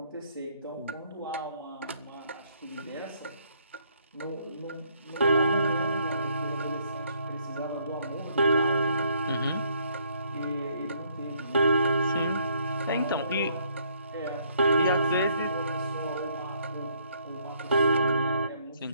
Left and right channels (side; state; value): both; inverted; correlation -0.67